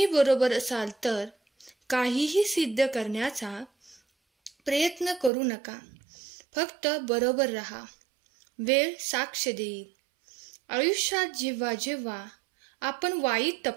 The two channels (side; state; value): left; drops out; at 5.3 s